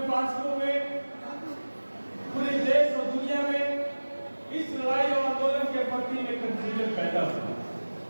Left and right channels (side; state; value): both; inverted; correlation -1.00